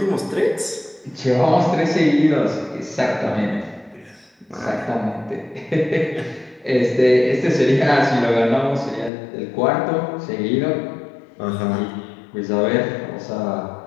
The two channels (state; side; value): drops out; right; at 9.1 s